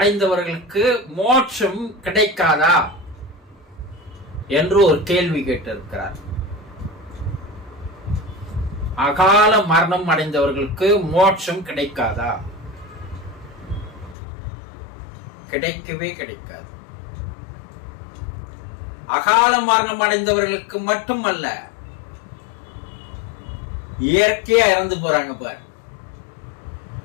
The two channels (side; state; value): right; drops out; at 14.2 s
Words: மோட்சம் கிடைக்காதா என்று ஒரு கேள்வி கேட்டிருக்கிறார். அகால மரணம் அடைந்தவர்களுக்கு மோட்சம் கிடைக்காதா? கிடைக்கவே கிடைக்காது. அகால மரணம் அடைந்தவர்களுக்கு மட்டுமல்ல, இயற்கையா இறந்து போறாங்க பாரு,